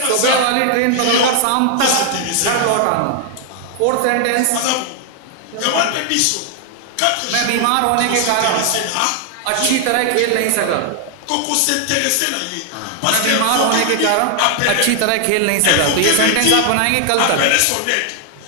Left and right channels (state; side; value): different; both; correlation 0.00